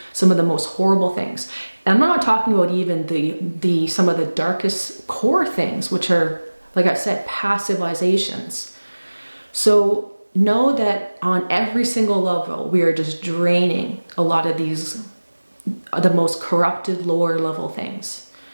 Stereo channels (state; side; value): inverted; both; correlation -1.00